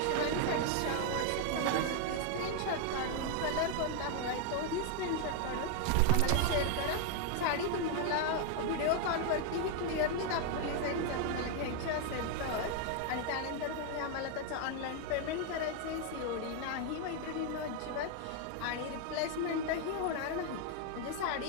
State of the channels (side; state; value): both; different; correlation 0.00